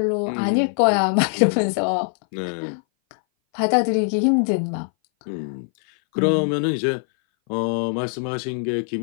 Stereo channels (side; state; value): right; silent; 60 dB below the other